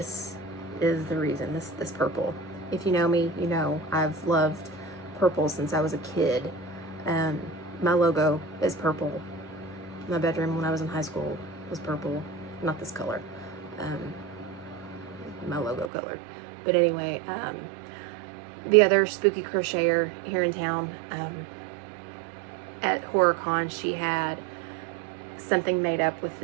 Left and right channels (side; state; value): left; drops out; at 15.9 s